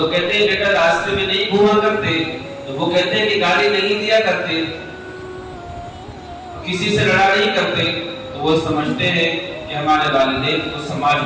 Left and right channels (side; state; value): both; identical; correlation 1.00